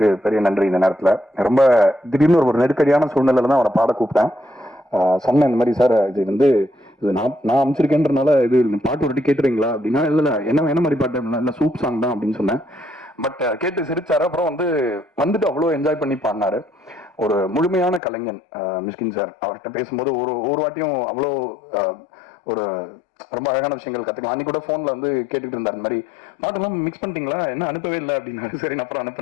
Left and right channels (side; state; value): right; drops out; at 18.0 s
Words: பெரிய நன்றி. இந்த நேரத்தில் ரொம்ப திடீர்னு ஒரு நெருக்கடியான சூழ்நிலையில் தான் அவரை பாட கூப்பிட்டேன். சொன்னேன் இந்த மாதிரி, சார் இது வந்து இது நான் அமைச்சிருக்கேன்றனால இது பாட்டு ஒரு கேட்டுறீங்களா அப்படின்னா, இல்லை என்ன மாதிரி பாட்டு இல்லை சூப் சாங் தான் அப்படின்னு சொன்னேன். பட் கேட்டு சிரிச்சாரு. அப்புறம் வந்துட்டு அவ்வளோ என்ஜாய் பண்ணி பாடினாரு. ஒரு முழுமையான கலைஞன் மிஸ்கின் சார். அவர்கிட்ட பேசும்போது ஒரு வாட்டியும் அவ்வளோ ஒரு ரொம்ப அழகான விஷயங்கள் கற்றுக்கலாம். அன்னைக்கு கூட ஃபோனில் வந்து கேட்டுக்கிட்டு இருந்தார், இந்த மாதிரி பாட்டெல்லாம் மிக்ஸ் பண்ணிட்டீங்களா, என்ன அனுப்பவே இல்லை அப்படின்னாரு. சரி, நான் அப்புறம்